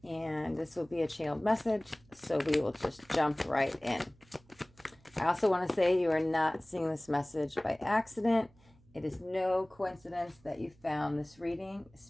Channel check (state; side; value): noise; right; hum, 29 dB below the sound